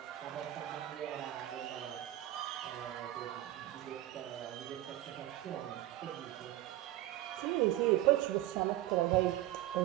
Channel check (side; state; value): left; quieter; 14.8 dB